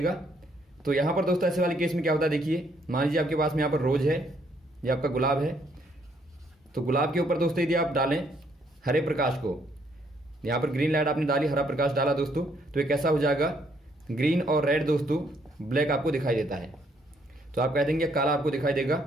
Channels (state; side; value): normal; both; correlation 0.69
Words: तो यहाँ पर दोस्तों ऐसे वाले केस में क्या होता है, देखिए मान लीजिए आपके पास में यहाँ पर रोज है, ये आपका गुलाब है। तो गुलाब के ऊपर दोस्तों यदि आप डालें हरे प्रकाश को, यहाँ पर ग्रीन लाइट आपने डाली, हरा प्रकाश डाला दोस्तों, तो ये कैसा हो जाएगा, ग्रीन और रेड दोस्तों ब्लैक आपको दिखाई देता है। तो आप कह देंगे काला आपको दिखाई देगा,